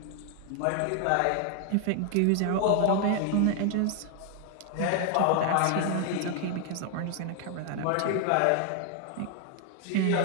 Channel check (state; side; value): different; both; correlation 0.00